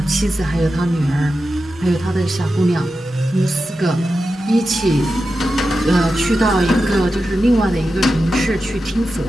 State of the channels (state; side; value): normal; both; correlation 0.91